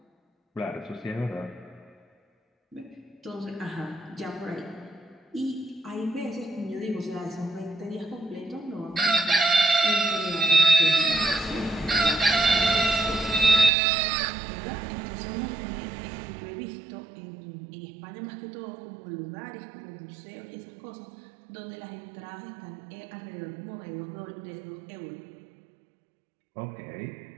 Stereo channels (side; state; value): left; drops out; at 13.7 s